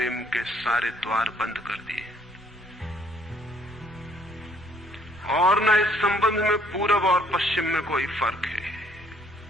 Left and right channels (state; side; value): normal; both; correlation 0.64